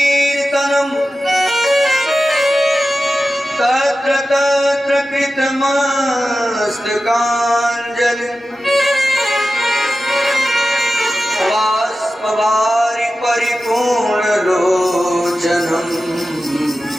तत्र तत्र कृतमस्तकाञ्जलि बाष्पवारि परिपूर्णलोचनम्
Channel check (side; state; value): both; normal; correlation 0.93